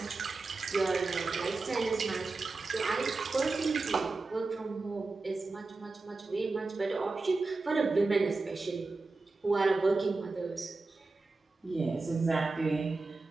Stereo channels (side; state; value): left; quieter; 3.7 dB